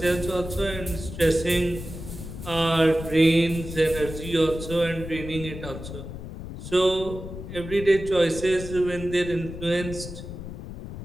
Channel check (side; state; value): left; noise; rumble, 10 dB below the sound